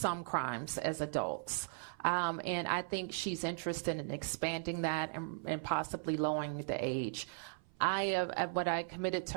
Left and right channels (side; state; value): left; silent; 53 dB below the other